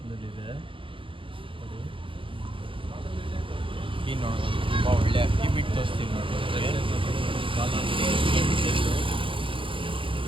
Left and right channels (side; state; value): left; late; 0.25 ms